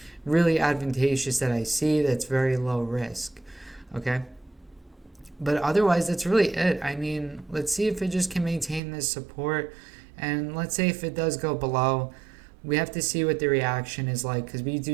really advantageous that I see that's very low risk, okay? But otherwise, that's really it. I mean, let's see if it just can maintain this support. And let's say if it does go below, we have to see what the reaction is like, because we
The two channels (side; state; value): left; drops out; at 8.8 s